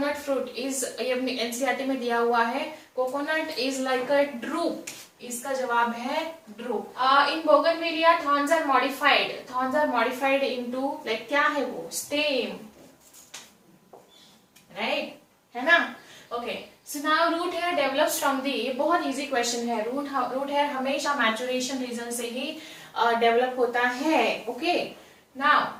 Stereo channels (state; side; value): identical; both; correlation 1.00